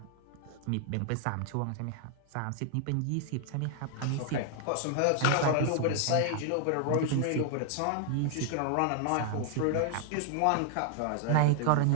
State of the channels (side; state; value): both; different; correlation 0.00